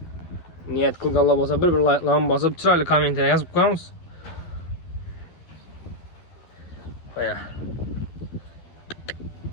Niyet qılıq Allah basa bir like'larını basıb, çıraylı kommentaya yazıb qoyamız. Elə.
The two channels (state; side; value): late; right; 12 ms